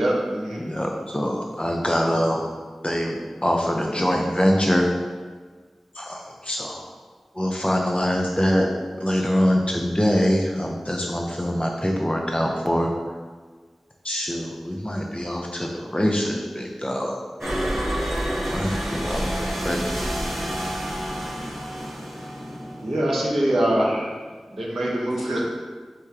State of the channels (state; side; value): normal; both; correlation 0.96